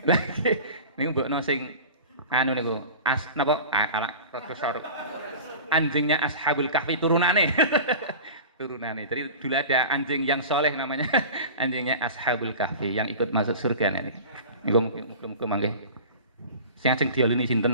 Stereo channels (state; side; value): inverted; both; correlation -0.37